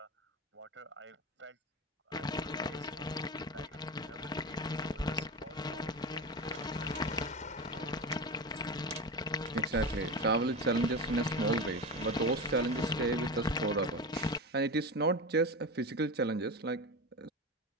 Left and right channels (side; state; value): both; normal; correlation 0.23